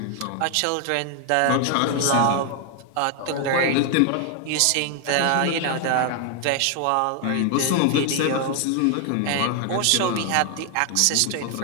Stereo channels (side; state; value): both; different; correlation 0.00